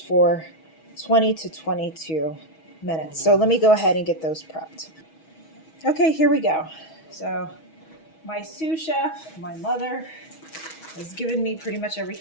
20 to 22 minutes. So let me go ahead and get those prepped. Okay, here we go. So my sous chef, my mother, has given me pretty much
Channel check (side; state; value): right; late; 6.2 ms